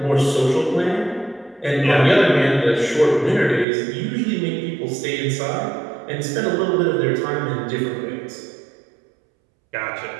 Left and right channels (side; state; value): left; drops out; at 3.7 s